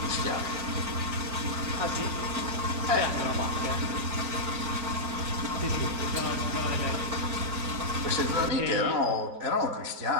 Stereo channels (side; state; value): left; late; 4.4 ms